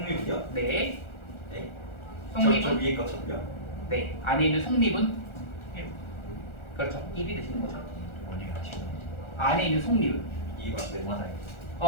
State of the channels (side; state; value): right; late; 1.4 ms